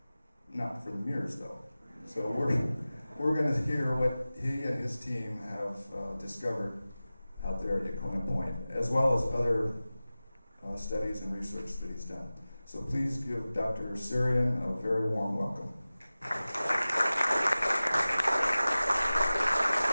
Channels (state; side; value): inverted; both; correlation -0.97